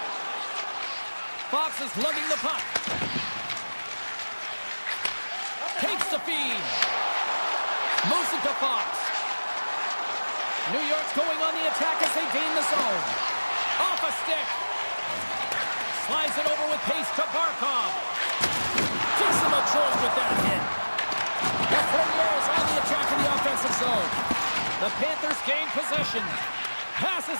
Fox is lugging the puck. Takes the feed. Moves it to Fox. New York's going on the attack as they gain the zone. Off a stick. Slides it over with pace to Barkov. Gives him a jolt with that hit. The Fournier is on the attack in the offensive zone. The Panthers gain possession. Passes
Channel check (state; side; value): inverted; both; correlation -1.00